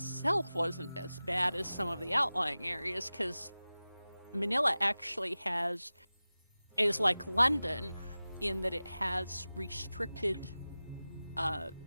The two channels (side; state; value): both; inverted; correlation -0.97